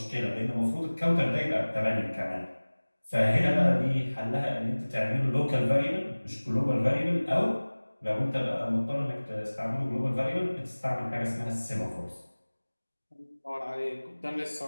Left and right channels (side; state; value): both; inverted; correlation -1.00